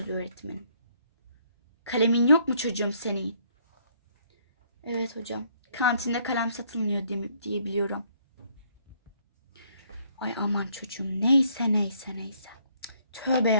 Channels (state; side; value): inverted; both; correlation -0.66